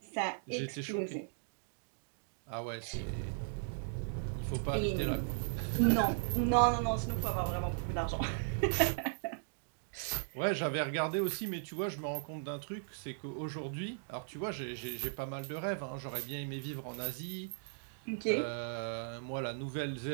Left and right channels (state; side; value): silent; left; digital silence